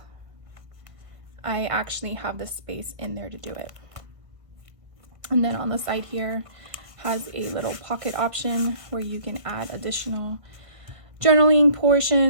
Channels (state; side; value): late; left; 1.6 ms